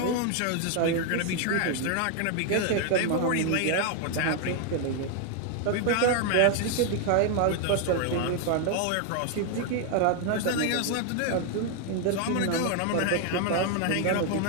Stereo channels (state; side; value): different; both; correlation 0.01